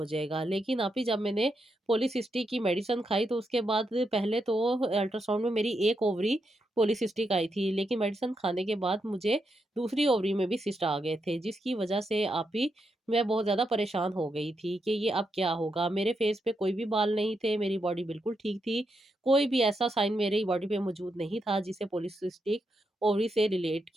जाएगा। लेकिन आप ही जब मैंने पॉलीसिस्टिक की मेडिसिन खाई तो उसके बाद पहले तो अल्ट्रासाउंड में मेरी एक ओवरी पॉलीसिस्टिक आई थी, लेकिन मेडिसिन खाने के बाद मुझे दूसरी ओवरी में भी सिस्ट आ गए थे, जिसकी वजह से आप ही मैं बहुत ज़्यादा परेशान हो गई थी कि ये अब क्या होगा? मेरे फेस पे कोई भी बाल नहीं थे, मेरी बॉडी बिल्कुल ठीक थी। कोई भी ऐसा साइन मेरी बॉडी पे मौजूद नहीं था जिसे पॉलीसिस्टिक ओवरी से रिलेट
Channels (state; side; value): normal; both; correlation 0.83